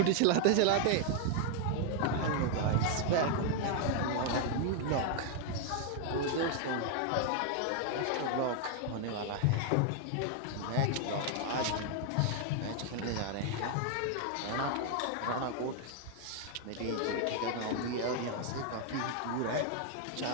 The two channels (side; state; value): both; different; correlation 0.00